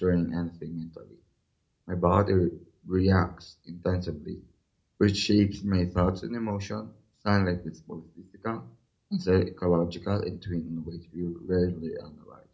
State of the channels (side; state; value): both; identical; correlation 1.00